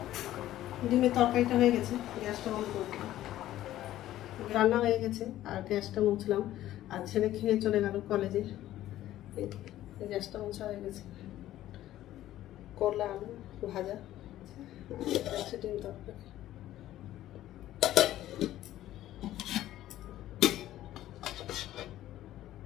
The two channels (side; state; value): right; quieter; 13.8 dB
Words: ডিমের তরকারিটা হয়ে গেছে, গ্যাসটা বন্ধ করে দিলাম। রান্না হয়ে গেছে আর গ্যাসটা মুছলাম। আর ছেলে খেয়ে চলে গেল কলেজে। গ্যাসটা মোছা হয়ে গেছে। করলা আলু ভাজা, ডিম তরকারি।